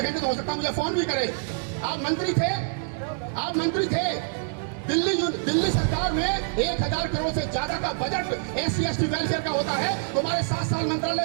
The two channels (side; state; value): left; silent; digital silence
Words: तो हो सकता है मुझे फोन भी करे। आप मंत्री थे दिल्ली सरकार में 1000 करोड़ से ज्यादा का बजट SC/ST वेलफेयर का होता है। तुम्हारे 7 साल